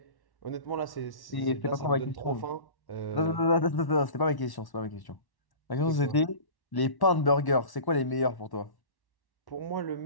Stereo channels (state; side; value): late; right; 1.1 ms